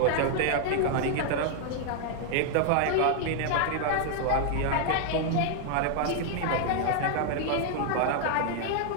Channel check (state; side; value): different; both; correlation 0.00